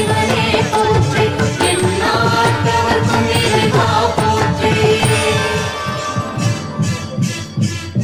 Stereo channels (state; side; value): identical; both; correlation 1.00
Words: போற்றி எந்நாட்டவர்க்கும் இறைவா போற்றி